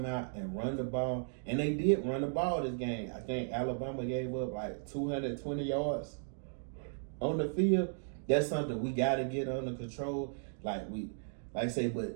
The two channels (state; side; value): silent; left; digital silence